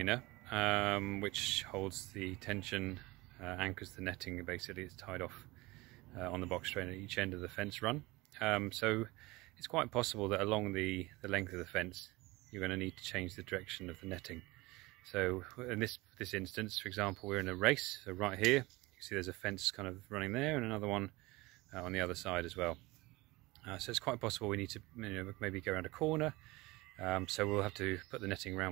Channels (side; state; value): left; quieter; 21.7 dB